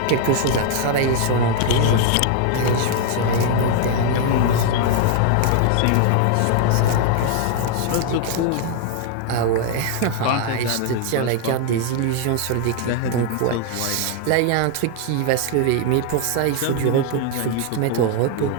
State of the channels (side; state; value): both; different; correlation 0.00